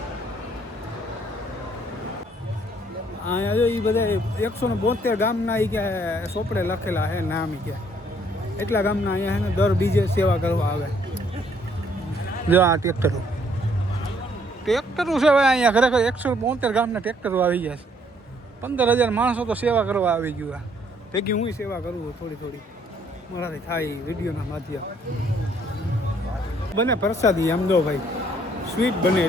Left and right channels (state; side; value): normal; both; correlation 0.65